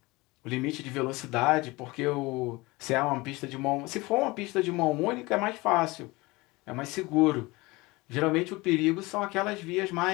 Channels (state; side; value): quieter; right; 22.6 dB